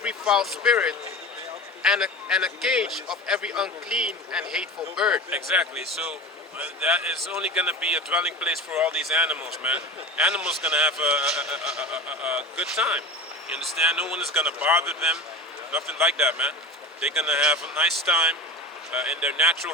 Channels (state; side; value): normal; both; correlation 0.31